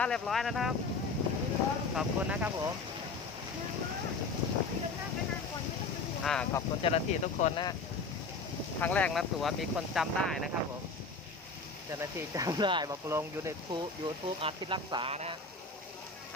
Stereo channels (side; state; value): right; quieter; 4.0 dB